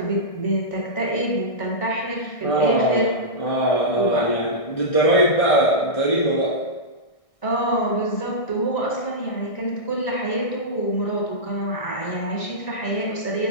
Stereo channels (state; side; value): late; right; 1.6 ms